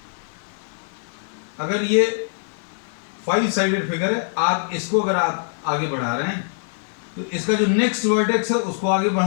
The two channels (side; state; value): right; silent; digital silence